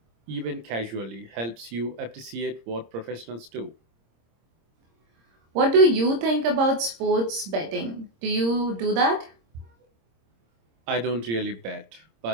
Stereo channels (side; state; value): left; late; 26 ms